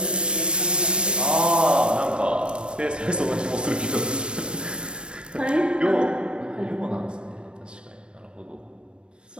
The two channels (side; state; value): left; late; 0.056 ms